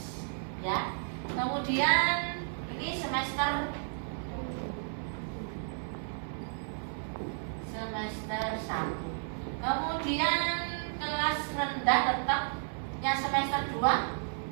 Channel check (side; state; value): left; silent; 56 dB below the other